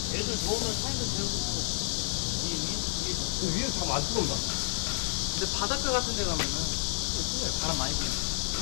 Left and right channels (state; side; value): silent; right; 57 dB below the other